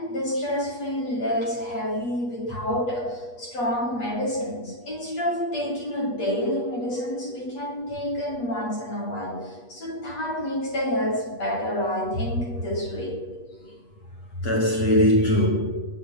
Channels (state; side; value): late; right; 8.3 ms